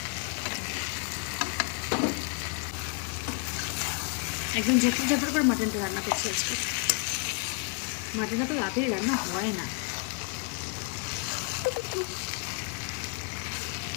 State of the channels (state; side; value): quieter; right; 37.9 dB